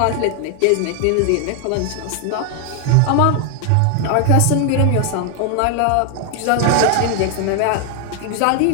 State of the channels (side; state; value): both; different; correlation 0.01